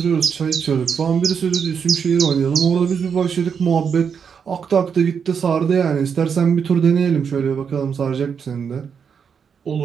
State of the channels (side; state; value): left; quieter; 6.8 dB